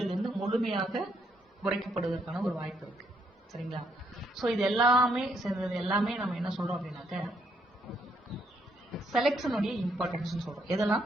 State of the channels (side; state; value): both; normal; correlation 0.73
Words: முழுமையாக குறைக்கப்படுவதற்கான ஒரு வாய்ப்பு இருக்கு. சரிங்களா? ஸோ இது எல்லாமே சேர்ந்தது எல்லாமே நம்ம என்ன சொல்றோம் அப்படின்னாக்க, செலெக்ஷனுடைய இம்பார்ட்டன்ஸ் சொல்றோம். எதெல்லாம்?